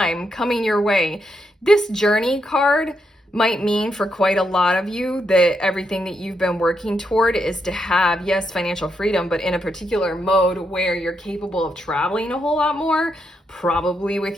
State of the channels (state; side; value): normal; both; correlation 0.81